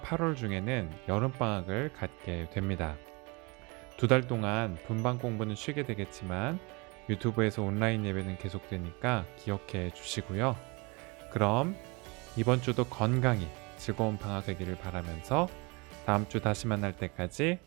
8월 중에는 여름방학을 갖게 됩니다. 2달 동안 분방 공부는 쉬게 되겠지만 유튜브에서 온라인 예배는 계속되니까 기억해 주시고요. 그럼 이번 주도 건강히 즐거운 방학 되기를 바라면서 다음 주 다시 만날 때까지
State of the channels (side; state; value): left; quieter; 27.5 dB